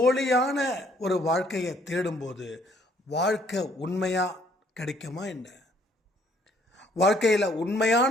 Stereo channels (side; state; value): both; normal; correlation 0.63